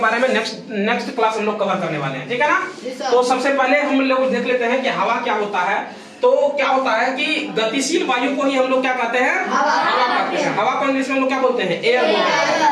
में नेक्स्ट क्लास हम लोग कवर करने वाले हैं, ठीक है ना। तो सबसे पहले हम लोग देख लेते हैं कि हवा क्या होता है। तो क्या होता है कि गतिशील वायु को ही हम लोग क्या कहते हैं? हवा कहते हैं। हवा को इंग्लिश में हम लोग क्या बोलते हैं? एयर बोलते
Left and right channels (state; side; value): identical; both; correlation 1.00